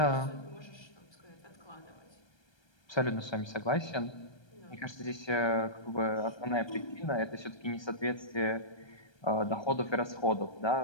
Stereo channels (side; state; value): right; late; 1.3 ms